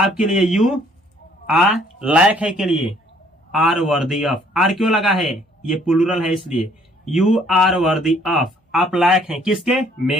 लिए यू आर, लायक है के लिए आर वर्दी ऑफ। आर क्यों लगा है, ये प्लूरल है इसलिए, यू आर वर्दी ऑफ, आप लायक हैं किसके,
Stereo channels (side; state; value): both; normal; correlation 0.61